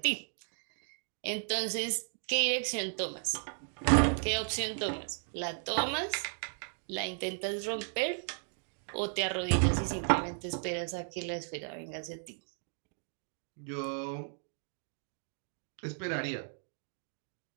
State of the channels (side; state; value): left; silent; digital silence